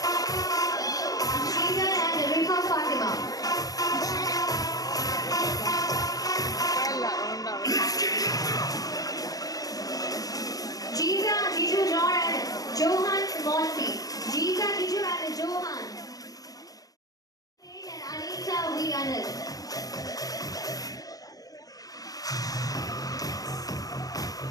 Johan Monty, Jeeta, Kiju and Johan. And Anita Vianel.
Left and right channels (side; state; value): right; late; 0.18 ms